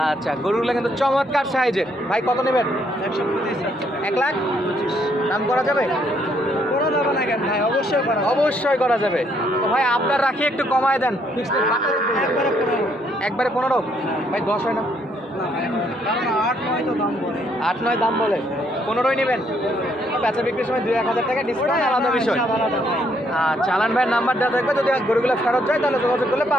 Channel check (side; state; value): both; normal; correlation 0.70